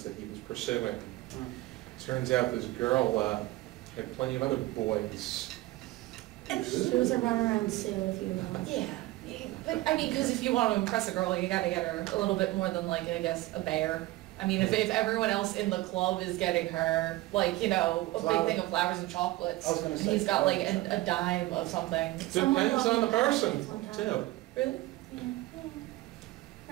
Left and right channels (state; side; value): quieter; left; 18.4 dB